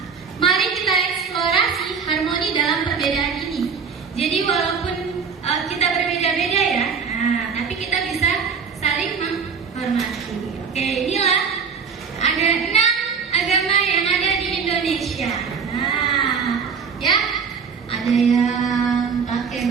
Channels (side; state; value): left; quieter; 6.0 dB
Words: Mari kita eksplorasi harmoni dalam perbedaan ini. Jadi walaupun kita berbeda-beda ya, tapi kita bisa saling menghormati. Oke, inilah ada 6 agama yang ada di Indonesia. Ya, ada yang pakai